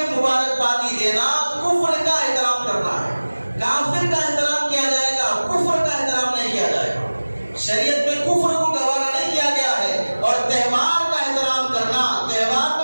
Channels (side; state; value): both; inverted; correlation -1.00